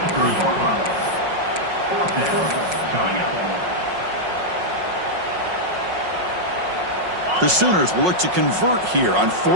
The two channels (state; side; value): late; left; 5.5 ms